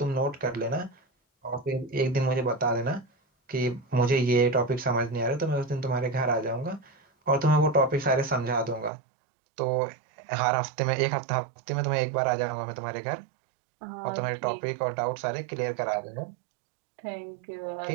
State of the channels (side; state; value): left; drops out; at 8.9 s